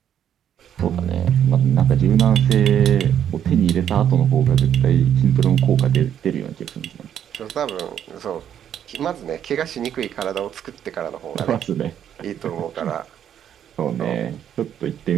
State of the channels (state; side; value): quieter; left; 9.6 dB